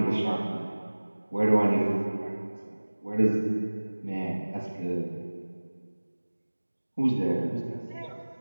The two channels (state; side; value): inverted; both; correlation -1.00